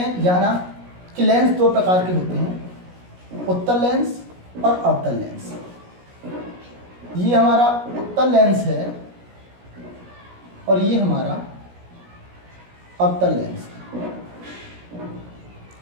जाना कि लेंस दो प्रकार के होते हैं, उत्तल लेंस और अवतल लेंस। ये हमारा उत्तल लेंस है और ये हमारा अवतल लेंस है।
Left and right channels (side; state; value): left; late; 17 ms